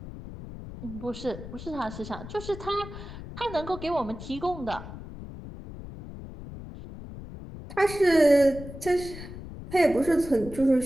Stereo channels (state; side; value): noise; left; rumble, 12 dB below the sound